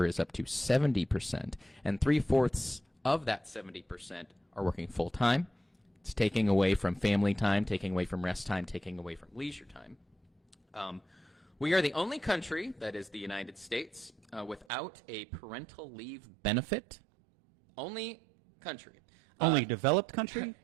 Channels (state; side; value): drops out; left; at 14.7 s